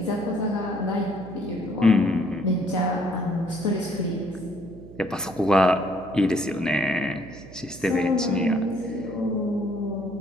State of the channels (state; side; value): noise; right; hum, 17 dB below the sound